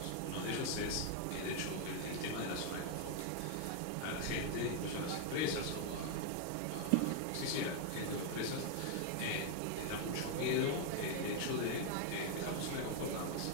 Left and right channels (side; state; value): both; different; correlation 0.00